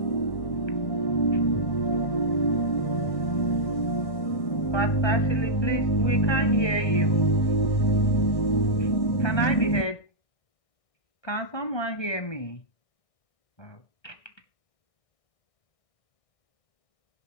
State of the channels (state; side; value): late; right; 1.6 ms